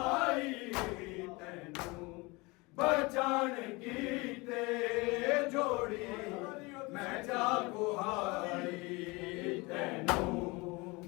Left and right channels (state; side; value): quieter; right; 25.3 dB